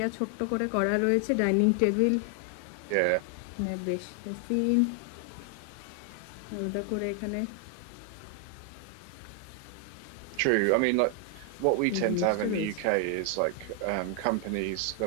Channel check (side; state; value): both; different; correlation 0.00